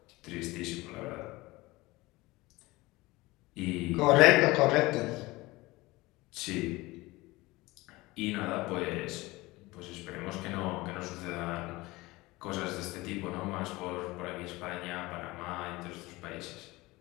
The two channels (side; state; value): right; quieter; 21.0 dB